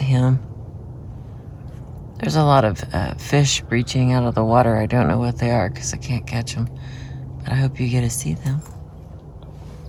There's a lot of fish breaching out of the water. I don't know what they are because I can't catch them, but I hope you get to see them.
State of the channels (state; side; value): identical; both; correlation 1.00